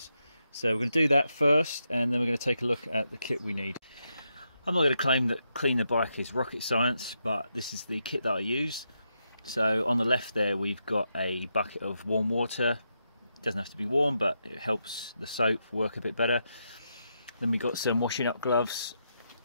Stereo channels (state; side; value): inverted; both; correlation -0.83